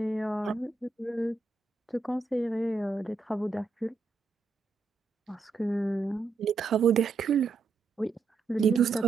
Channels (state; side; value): quieter; left; 4.3 dB